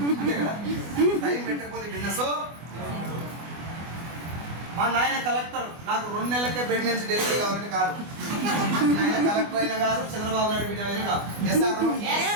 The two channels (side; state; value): left; late; 24 ms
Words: అంతే కదా, టైం పెట్టకపోతే బిజినెస్. మా నాయన కలెక్టర్, నాకు 2 నెలలకే ప్రెగ్నెన్సీ డెలివరీ కావాలంటే కాదు. నాయన కలెక్టర్ అయినా కాదు, చంద్రబాబు నాయుడు బిడ్డ అయినా కాదు. Yes or no?